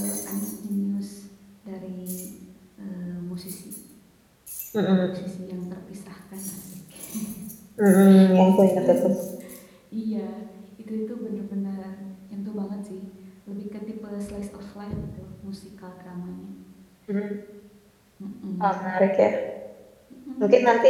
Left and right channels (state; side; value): identical; both; correlation 1.00